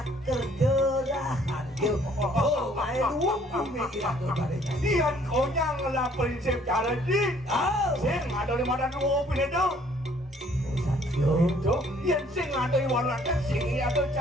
kerjerahan oh main uang kumine ilato pada dian konyang lah prinsip cara di sing ada di mana dulu pinedo itu yang sing ada di warna sing atau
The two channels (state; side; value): normal; both; correlation 0.60